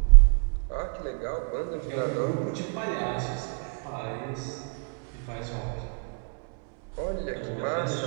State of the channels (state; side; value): quieter; left; 39.0 dB